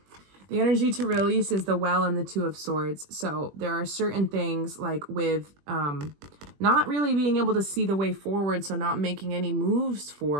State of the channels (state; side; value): late; left; 21 ms